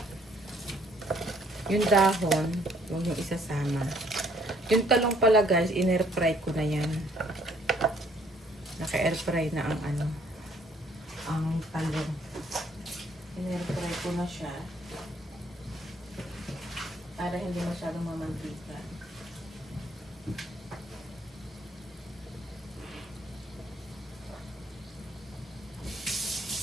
Yung dahon, huwag yung isasama. Yung talong pala guys, in-air fry ko na yan. Naka-air fry na ang ano, ang talong. In-air fry ko na siya. Para hindi masyadong mamantika.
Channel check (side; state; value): both; normal; correlation 0.64